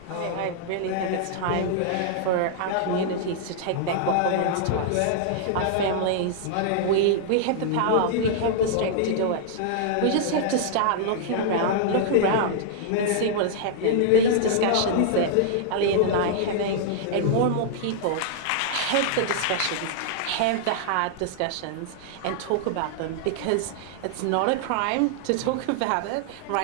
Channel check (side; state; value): both; different; correlation -0.01